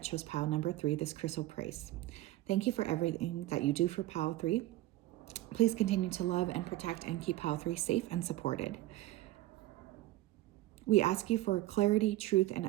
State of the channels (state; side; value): quieter; left; 16.3 dB